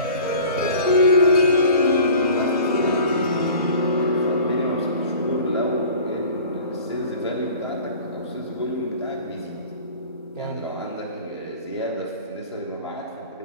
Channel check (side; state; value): both; inverted; correlation -0.44